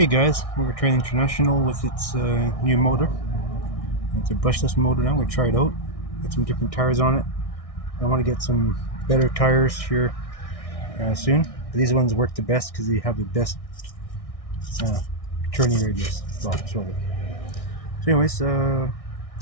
guys, we're Train International with its new motor. It's a brushless motor now. We try it out. Get some different tires on it. I want to get some better tires here soon. But these ones work the best because they have the best uh, turning radius. Well, sort of. So, anyways,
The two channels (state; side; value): late; right; 1.6 ms